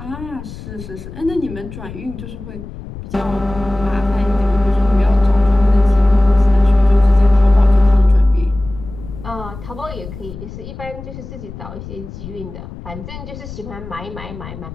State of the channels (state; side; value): noise; left; rumble, 13 dB below the sound